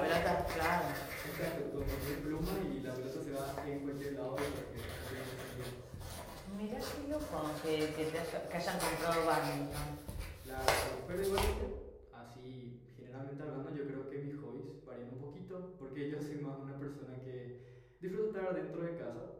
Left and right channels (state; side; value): identical; both; correlation 1.00